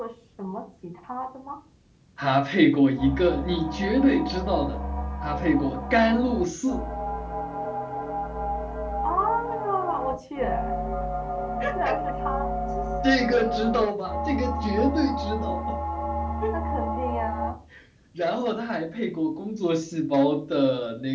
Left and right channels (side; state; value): both; identical; correlation 1.00